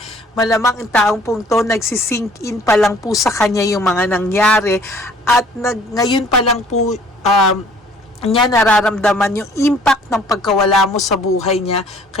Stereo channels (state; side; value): normal; both; correlation 0.55